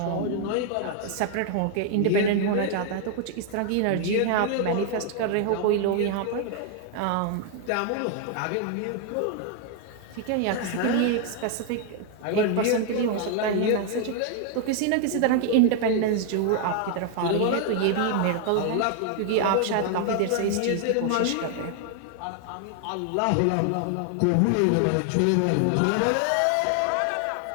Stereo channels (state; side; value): different; both; correlation 0.00